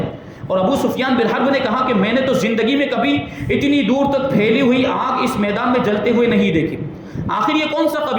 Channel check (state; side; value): identical; both; correlation 1.00